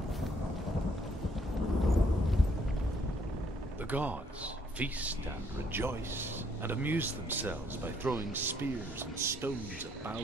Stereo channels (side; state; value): both; normal; correlation 0.67